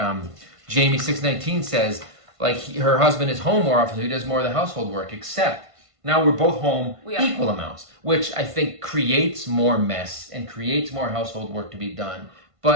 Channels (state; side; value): late; left; 1.5 ms